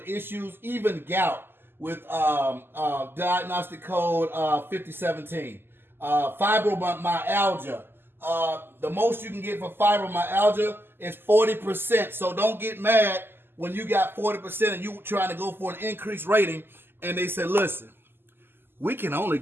issues, even gout with diagnostic code 5017. Fibromyalgia. The most you can get for fibromyalgia is 40%. So don't get mad when you got 40% and you trying to go for an increased rating and they say, listen, we can only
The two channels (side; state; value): left; late; 0.10 ms